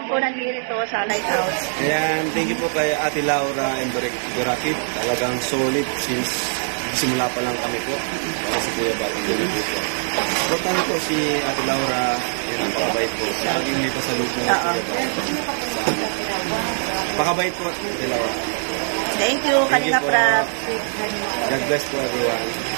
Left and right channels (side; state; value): left; silent; digital silence